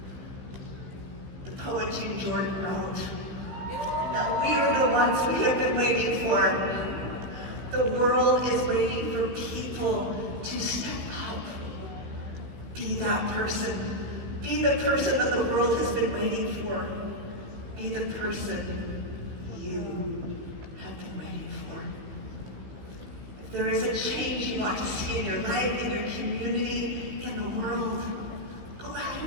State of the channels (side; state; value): left; late; 15 ms